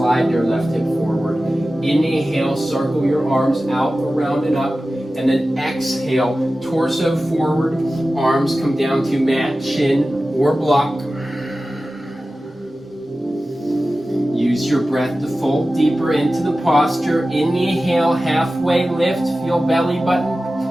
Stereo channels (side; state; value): both; normal; correlation 0.95